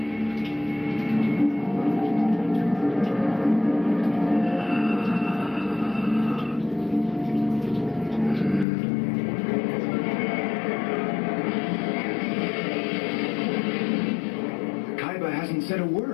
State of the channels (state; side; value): drops out; right; at 8.7 s